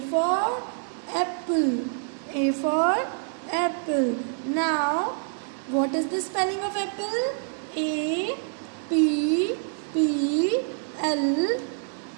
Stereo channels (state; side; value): silent; left; 61 dB below the other